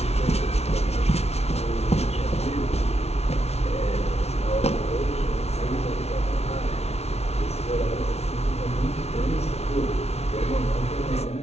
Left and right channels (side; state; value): right; late; 0.31 ms